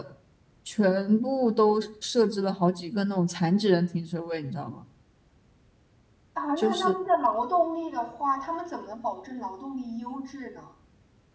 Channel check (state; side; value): identical; both; correlation 1.00